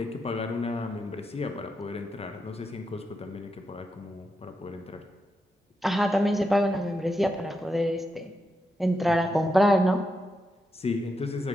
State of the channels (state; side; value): normal; both; correlation 0.85